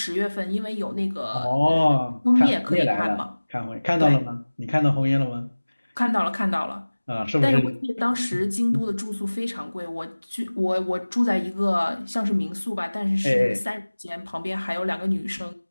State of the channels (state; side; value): inverted; both; correlation -1.00